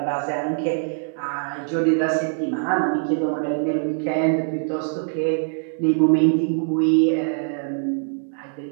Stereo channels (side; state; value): left; silent; digital silence